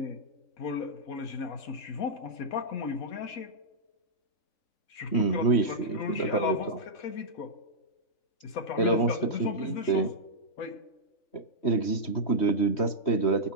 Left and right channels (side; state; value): right; late; 3.1 ms